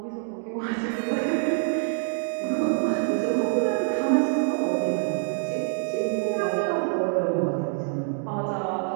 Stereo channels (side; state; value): left; silent; 61 dB below the other